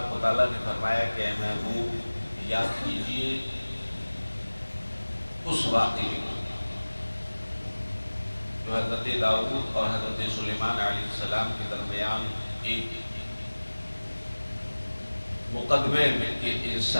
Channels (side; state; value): both; inverted; correlation -1.00